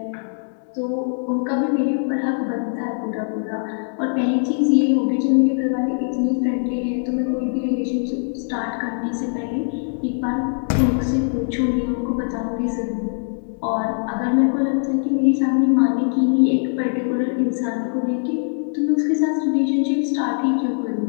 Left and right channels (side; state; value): right; silent; 64 dB below the other